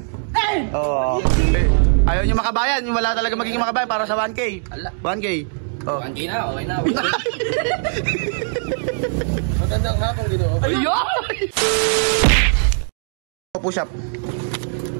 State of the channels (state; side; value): silent; left; 64 dB below the other